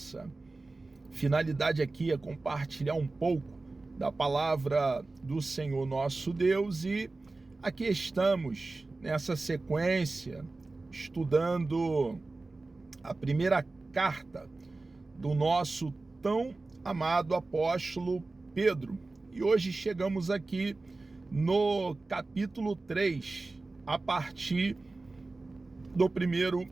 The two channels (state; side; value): quieter; left; 3.4 dB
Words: finalidade aqui é compartilhar um pouco da palavra do Senhor nosso Deus, e aqui estamos nessa sequência estudando a primeira carta do nosso tão amado apóstolo Pedro. E hoje chegamos aqui no capítulo 3, a partir do primeiro